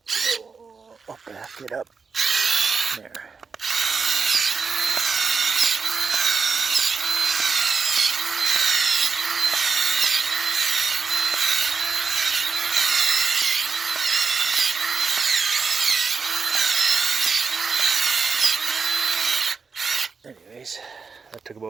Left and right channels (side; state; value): left; quieter; 5.1 dB